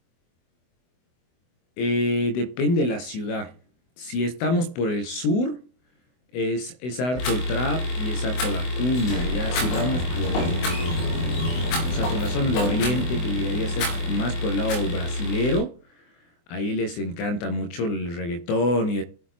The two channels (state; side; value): late; right; 24 ms